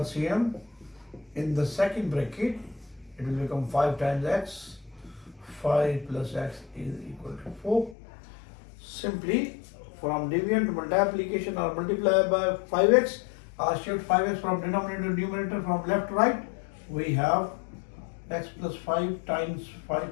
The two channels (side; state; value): right; drops out; at 8.0 s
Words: In the second bracket, it will become 5 times x. 5 plus x is equal to 4. Simply from division to multiplication or multiply by 5x, or shift 5x from denominator to numerator from left to right, we have x plus 5 times